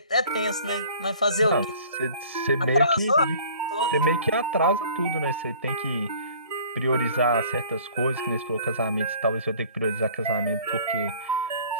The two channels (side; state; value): both; inverted; correlation -0.51